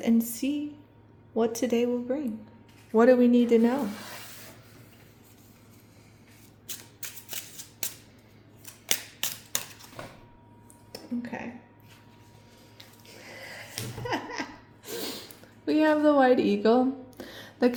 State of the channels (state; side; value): identical; both; correlation 1.00